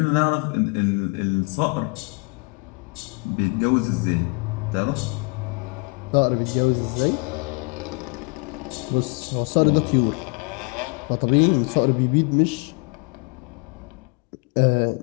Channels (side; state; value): right; quieter; 33.0 dB